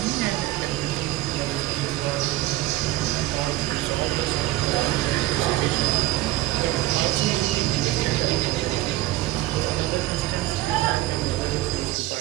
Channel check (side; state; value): left; quieter; 16.7 dB